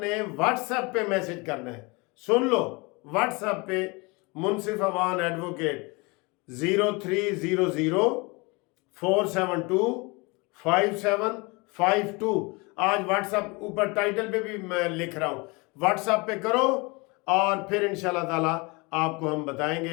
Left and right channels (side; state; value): right; quieter; 27.2 dB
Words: व्हाट्सएप पे मैसेज करना है। सुन लो, व्हाट्सएप पे मुनसिफ अवान एडवोकेट 0300472572। आज व्हाट्सएप ऊपर टाइटल पे भी मैं लिख रहा हूँ, व्हाट्सएप पे करो और फिर इंशाल्लाह ताला आपको हम